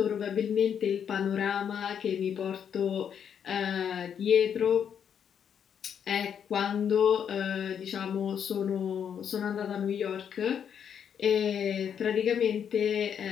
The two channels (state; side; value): quieter; right; 8.1 dB